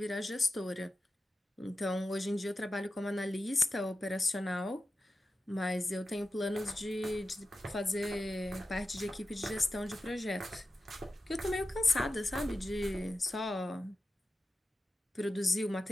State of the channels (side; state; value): both; normal; correlation 0.92